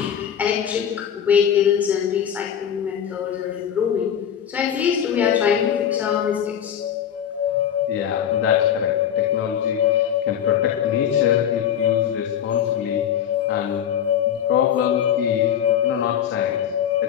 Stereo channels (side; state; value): right; quieter; 9.3 dB